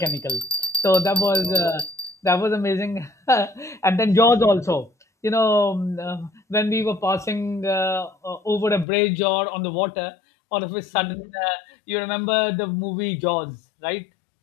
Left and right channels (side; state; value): right; drops out; at 8.8 s